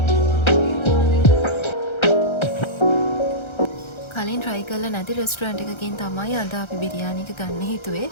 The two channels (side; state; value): right; late; 1.3 ms